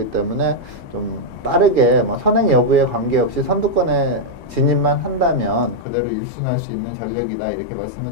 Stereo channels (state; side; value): drops out; right; at 5.9 s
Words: 때문에 좀 빠르게 뭐 선행 여부에 관계없이 선두권에 진입만 한다면 그대로 1순할 수 있는 전력이다 이렇게